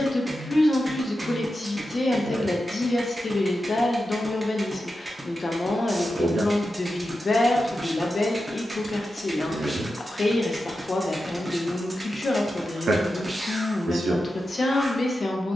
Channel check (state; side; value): normal; both; correlation 0.90